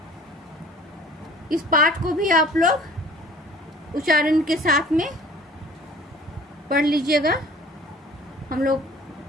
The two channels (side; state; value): both; normal; correlation 0.49